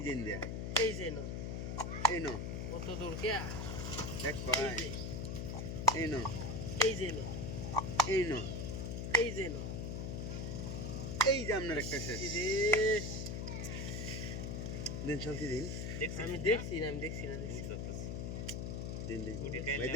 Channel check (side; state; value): left; noise; hum, 3 dB below the sound